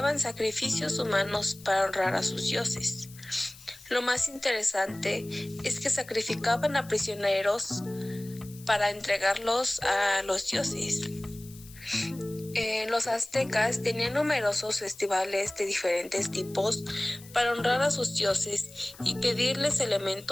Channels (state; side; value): noise; left; hiss, 20 dB below the sound